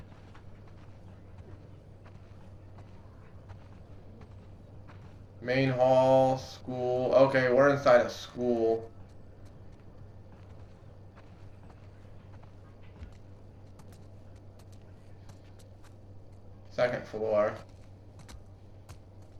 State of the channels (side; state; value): both; identical; correlation 1.00